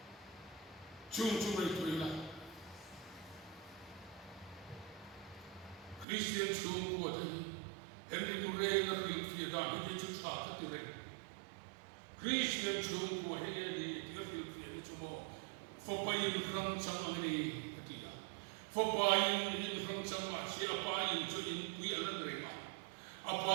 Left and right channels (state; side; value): drops out; left; at 6.1 s